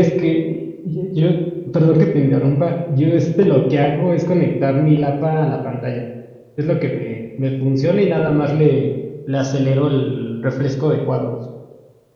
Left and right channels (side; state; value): both; identical; correlation 1.00